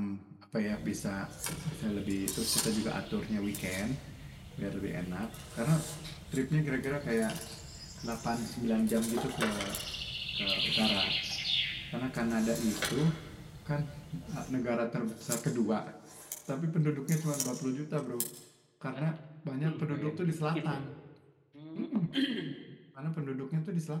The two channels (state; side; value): identical; both; correlation 1.00